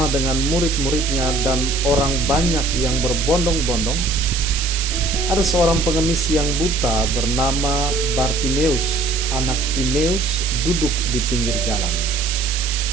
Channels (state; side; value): noise; right; hiss, 4 dB below the sound